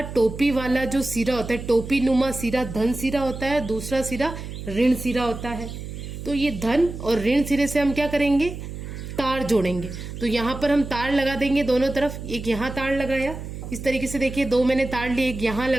टोपी वाला जो सिरा होता है, टोपी नुमा सिरा धन सिरा होता है, दूसरा सिरा ऋण सिरा होता है। तो ये धन और ऋण सिरे से हम क्या करेंगे, तार जोड़ेंगे। तो यहाँ पर हम तार लगा देंगे दोनों तरफ। एक यहाँ तार लगाया, इस तरीके से देखिए, दो मैंने तार लिए, एक यहाँ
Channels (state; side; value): noise; right; hum, 9 dB below the sound